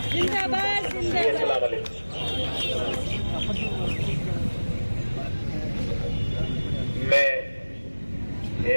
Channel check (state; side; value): inverted; both; correlation -1.00